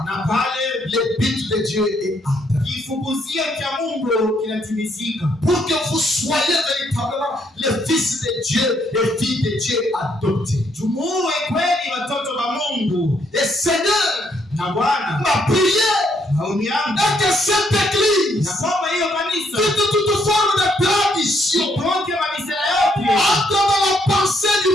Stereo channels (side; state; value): both; normal; correlation 0.72